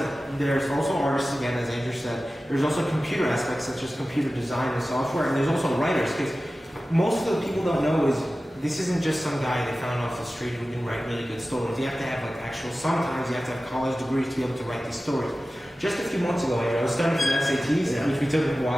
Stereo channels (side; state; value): both; normal; correlation 0.95